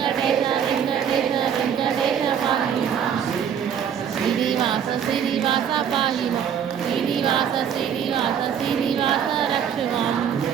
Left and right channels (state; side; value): quieter; left; 8.3 dB